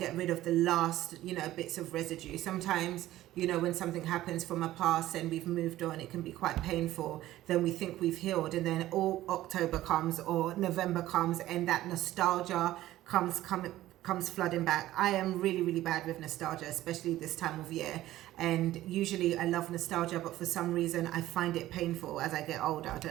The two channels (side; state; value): left; quieter; 14.9 dB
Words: rid of the last, bits of residue. Sometimes, when something happens from a past and we've moved on, it can be quite painful. Then we think we've healed, and then all October comes or November comes, and that nostalgia comes flooding back. I am really, really bad with nostalgia, especially this time of year. And usually I love nostalgia, but for some reason I find it painful as I get older. I